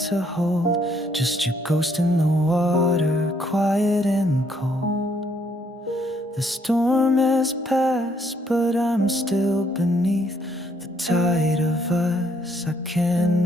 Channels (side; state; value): both; normal; correlation 0.69